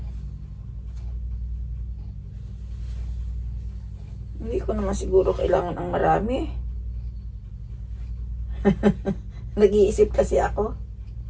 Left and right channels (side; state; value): both; identical; correlation 1.00